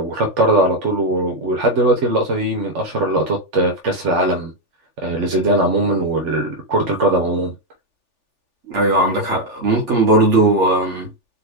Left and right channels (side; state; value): left; late; 3.4 ms